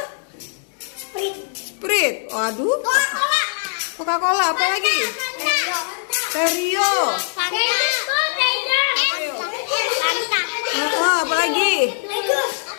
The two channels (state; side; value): silent; right; digital silence